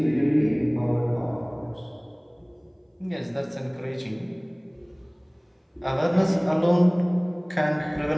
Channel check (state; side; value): identical; both; correlation 1.00